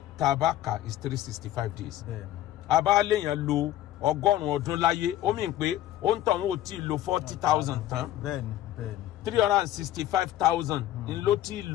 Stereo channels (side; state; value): right; quieter; 13.3 dB